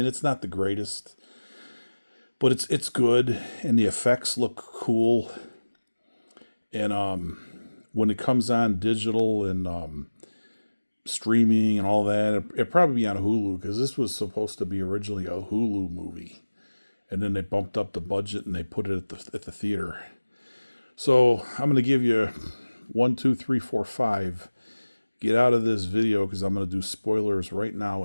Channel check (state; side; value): inverted; both; correlation -1.00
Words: it's not the greatest, but it's good and the effects look cool. And when it comes on digital and streaming and all that, it probably be on Hulu because this was supposed to be originally a Hulu movie. And then they bumped up the budget and they put it at the theater. So I'm going to give you 1, 2, 3, 4, 5. Get out of this video because I'm going to do spoilers right